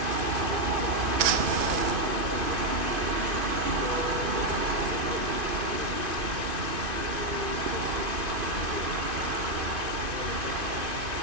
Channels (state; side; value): late; left; 2.5 ms